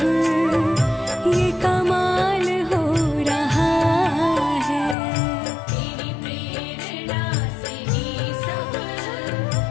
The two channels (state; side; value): drops out; right; at 5.0 s